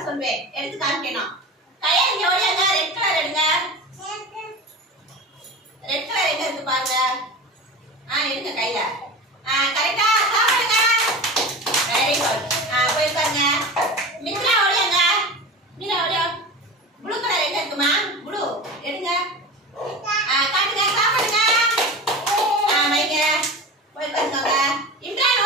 சொல்வேன். எடுத்து காமிக்கணும். கையை இங்க ஓடியாங்க. ரெட் கலர் எடுங்க. ரெட் கலர் எங்க இருக்கு பாருங்க. எடுங்க கையில. கரெக்டா சாப்பிடுங்க. Very good. போய் பாருங்க. மித்ரா ஓடியாங்க. மீரா ஓடியா. ப்ளூ கலர் எங்க இருக்குமா? ப்ளூ எடுங்க. காட்டுங்க சாப்பிடுங்க. வைங்க. போய் பாருங்க. இம்ரான்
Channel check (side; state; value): both; normal; correlation 0.30